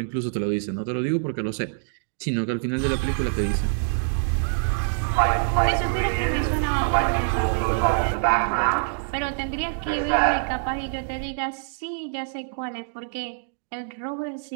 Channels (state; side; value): silent; left; digital silence